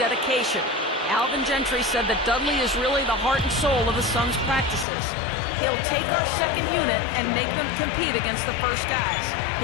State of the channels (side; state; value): right; drops out; at 4.9 s